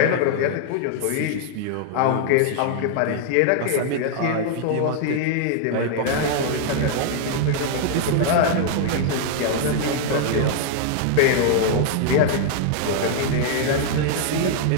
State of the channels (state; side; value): different; both; correlation 0.00